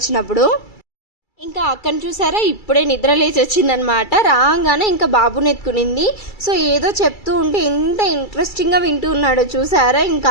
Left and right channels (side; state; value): right; late; 2.3 ms